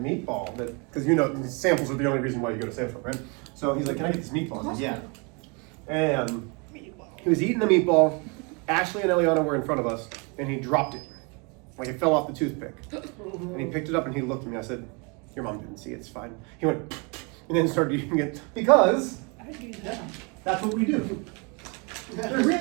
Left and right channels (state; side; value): quieter; left; 32.0 dB